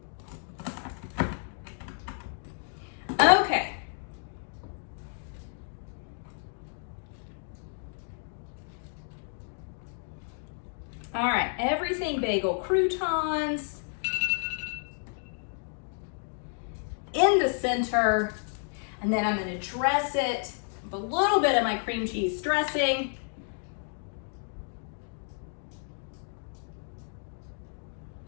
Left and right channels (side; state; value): right; silent; 57 dB below the other